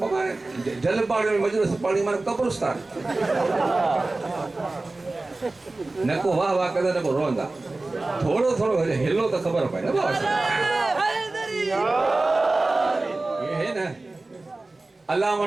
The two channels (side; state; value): left; quieter; 3.1 dB